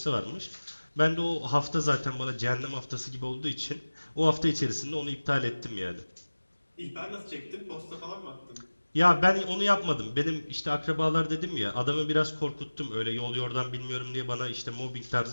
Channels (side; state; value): both; inverted; correlation -1.00